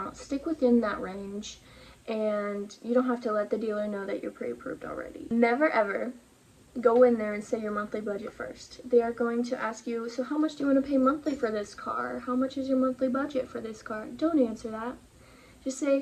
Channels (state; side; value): identical; both; correlation 1.00